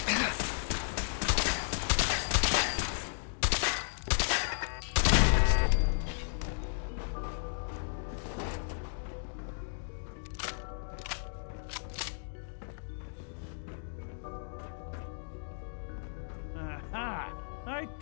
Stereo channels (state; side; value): silent; right; digital silence